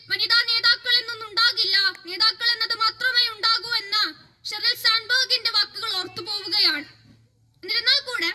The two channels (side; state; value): both; identical; correlation 1.00